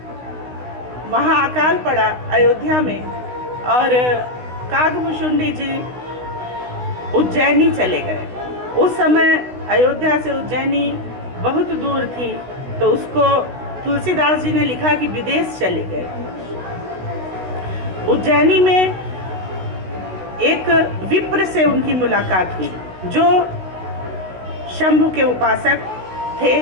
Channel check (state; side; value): late; left; 16 ms